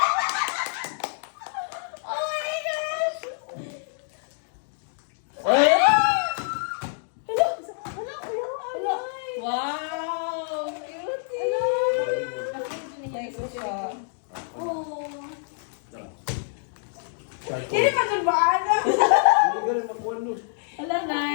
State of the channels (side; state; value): right; silent; digital silence